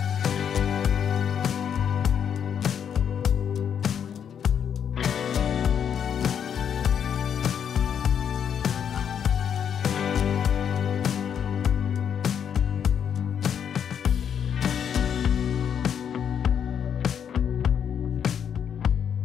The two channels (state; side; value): quieter; right; 8.2 dB